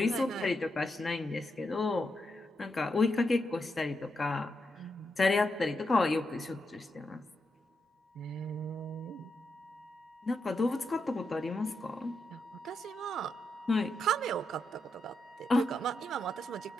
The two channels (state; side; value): normal; both; correlation 0.84